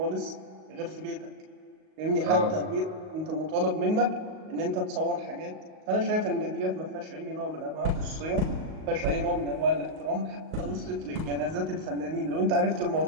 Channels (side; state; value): left; late; 38 ms